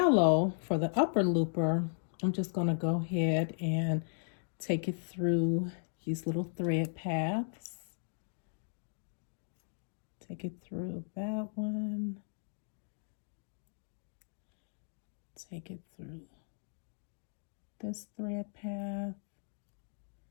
for the upper looper, I'm just going to go ahead and take it through these little thread paths. Take it through that one. Take it through this thread path.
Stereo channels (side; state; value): right; silent; digital silence